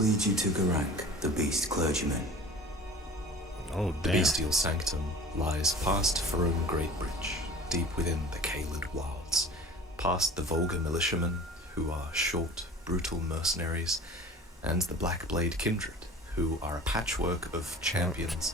you to Garak, the beast clergyman. Oh, The damn. bestial sanctum lies past Farum Greatbridge, deep within the Caelid wilds, past the vulgar militiamen, who are short, brutal mercenaries, and the Blackblade kindred, who are a patchwork of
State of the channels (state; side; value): normal; both; correlation 0.41